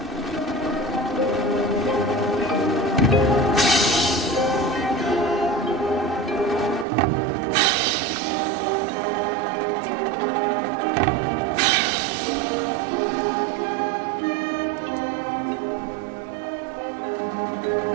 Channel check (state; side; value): drops out; left; at 6.9 s